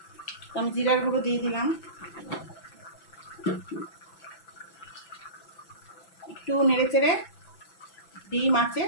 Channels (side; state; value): right; late; 6.0 ms